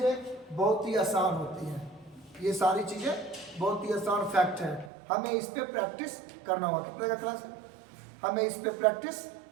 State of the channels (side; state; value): left; drops out; at 4.9 s